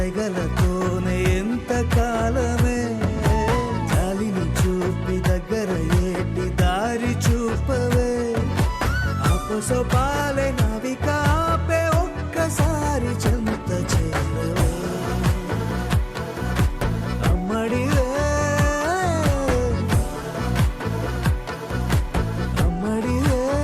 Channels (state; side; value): identical; both; correlation 1.00